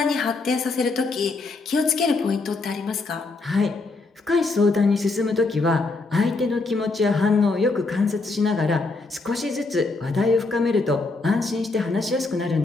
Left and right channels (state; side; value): quieter; right; 3.6 dB